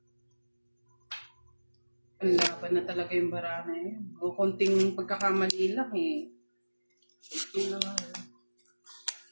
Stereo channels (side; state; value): both; inverted; correlation -1.00